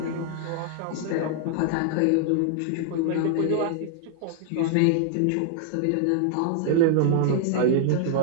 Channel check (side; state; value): both; different; correlation -0.01